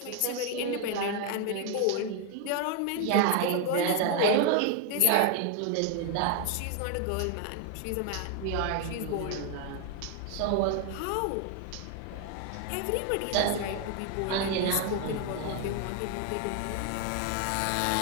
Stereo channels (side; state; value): both; different; correlation 0.00